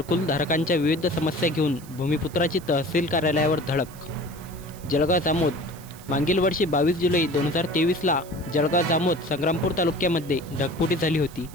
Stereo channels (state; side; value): noise; right; hiss, 21 dB below the sound